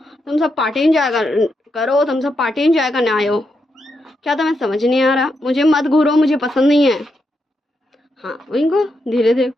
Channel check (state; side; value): normal; both; correlation 0.83